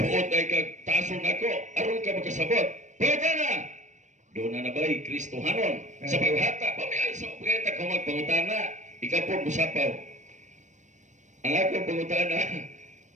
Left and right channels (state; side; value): late; left; 0.35 ms